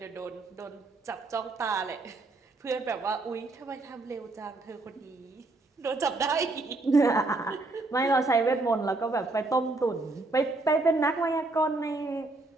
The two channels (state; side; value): quieter; left; 3.1 dB